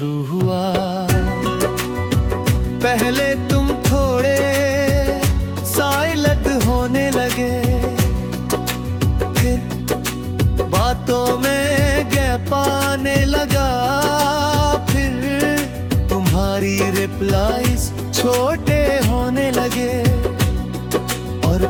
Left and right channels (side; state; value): both; identical; correlation 1.00